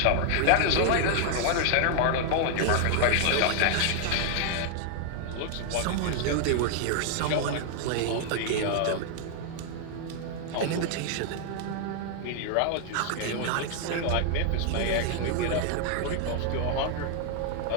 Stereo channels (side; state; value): both; different; correlation 0.00